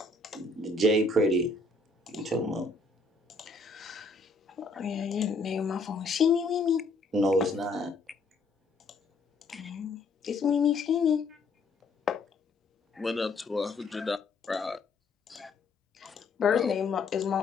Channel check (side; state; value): right; quieter; 3.5 dB